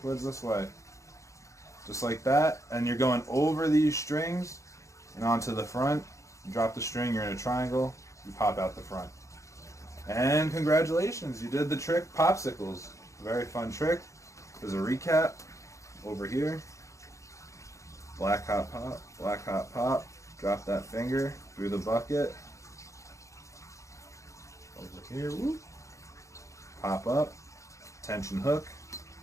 Towards this way. Just like that. And you're going over these strings and onto the front. You drop the string, you're in a triangle. You pop out the front. And congratulations, you did the trick Popsicles. Very fun trick. There's a recap over here. Black hot pop, black hot pop. Drop that finger through the bucket. Over here, whoop. Pop up. Tension hook.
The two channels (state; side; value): late; right; 0.15 ms